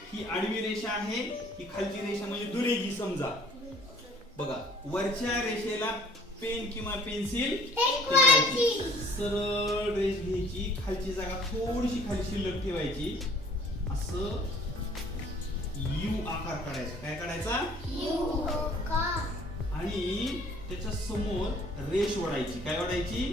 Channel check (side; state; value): both; normal; correlation 0.54